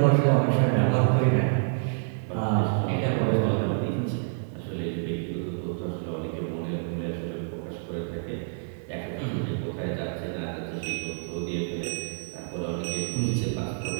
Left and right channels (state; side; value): silent; left; digital silence